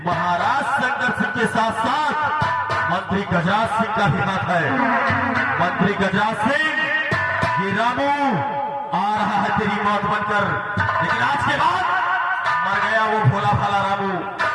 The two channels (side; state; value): both; identical; correlation 1.00